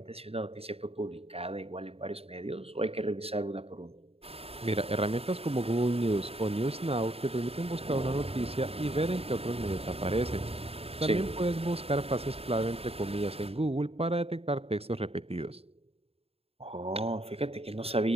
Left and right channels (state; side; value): late; left; 0.29 ms